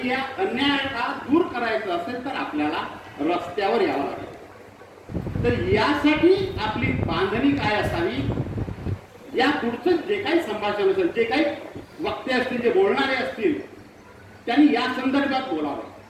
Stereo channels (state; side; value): identical; both; correlation 1.00